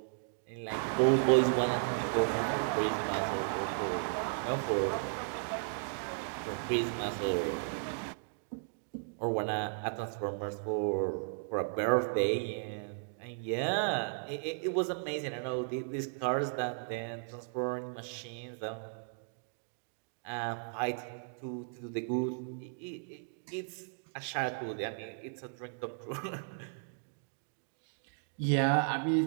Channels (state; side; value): silent; left; digital silence